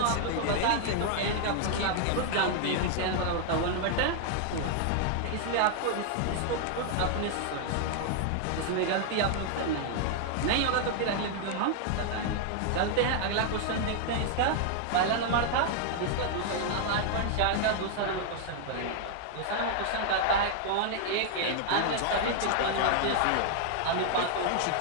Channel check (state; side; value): different; both; correlation 0.00